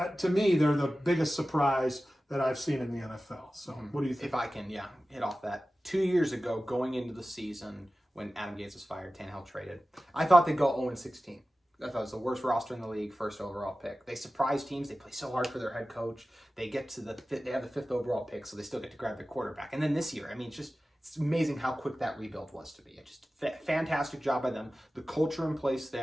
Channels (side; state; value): both; normal; correlation 0.95